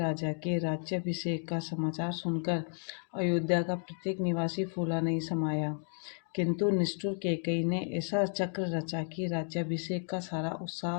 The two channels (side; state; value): right; silent; 56 dB below the other